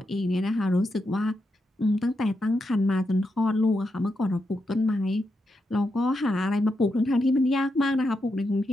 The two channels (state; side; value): normal; both; correlation 0.85